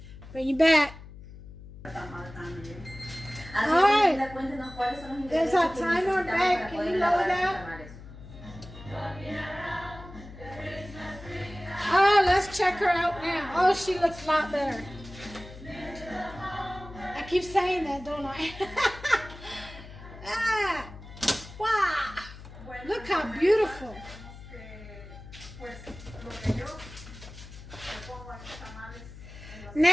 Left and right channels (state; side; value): noise; left; hum, 16 dB below the sound